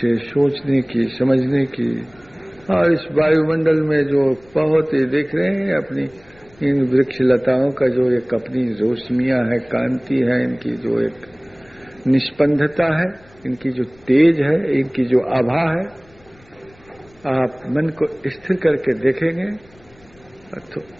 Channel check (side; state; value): left; noise; rumble, 29 dB below the sound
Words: सोचने की, समझने की, और इस वायुमंडल में जो बहुत ही देख रहे हैं अपनी इन वृक्ष लताओं का जो एक अपनी रोशनियां है, कांति है, इनकी जो एक निष्पंदता है, इनकी जो तेज है, इनकी जो आभा है, आप मन को स्थिर करके देखेंगे तो